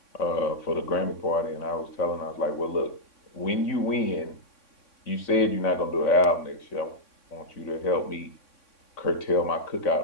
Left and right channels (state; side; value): late; right; 3.6 ms